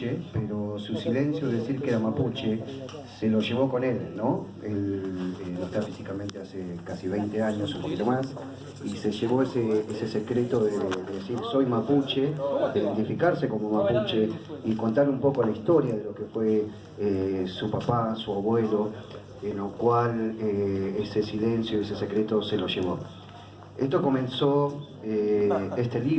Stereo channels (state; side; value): identical; both; correlation 1.00